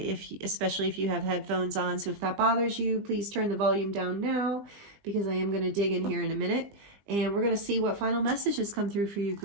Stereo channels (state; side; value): late; left; 20 ms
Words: if you have headphones on. So if that bothers you, please turn the volume down now, because I am going to dig in here in a minute. And we're going to see what final messages come through for you,